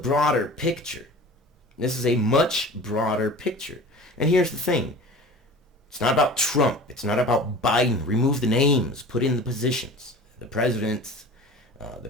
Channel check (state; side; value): normal; both; correlation 0.39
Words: picture. This is a much broader picture. And here's the thing. It's not about Trump. It's not about Biden. Remove the names. Put in the positions. The